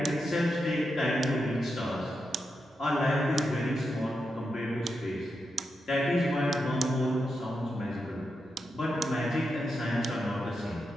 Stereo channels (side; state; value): both; normal; correlation 0.86